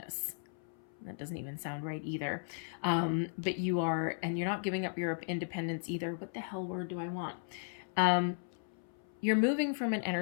That doesn't even sound right either. But you are, and you're not giving up your independence either. What the hell word do I want? You're moving from an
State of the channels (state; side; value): silent; right; 54 dB below the other